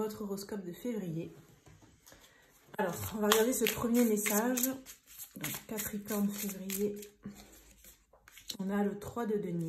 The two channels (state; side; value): identical; both; correlation 1.00